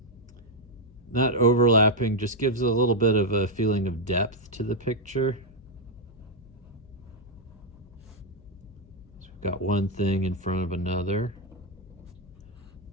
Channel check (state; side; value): noise; left; hum, 23 dB below the sound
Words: Not overlapping just gives a little bit of a feeling of depth to the picture. So we've got one thing in front of another.